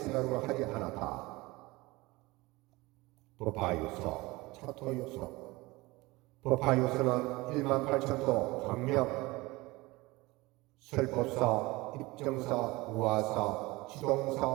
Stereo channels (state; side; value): quieter; left; 21.8 dB